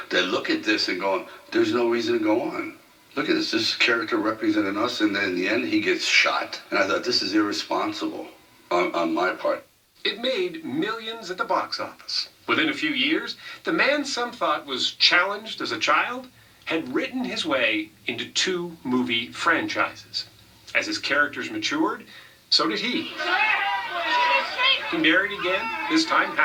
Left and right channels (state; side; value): identical; both; correlation 1.00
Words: that look at this and go, there's no reason to go on. Look at this character representing us, and then in the end, he gets shot. And I thought, this is irresponsible on my part. It made millions at the box office. Within a few years, the man some thought was challenged as a child had written his way into 2 movie franchises. As his characters matured, so did he. He married again, this time